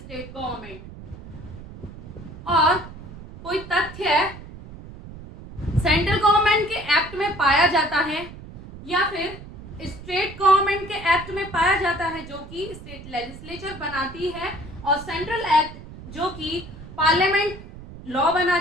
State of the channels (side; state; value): right; noise; rumble, 15 dB below the sound